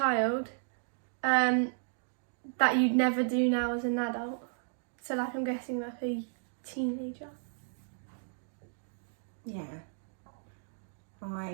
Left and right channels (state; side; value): silent; left; digital silence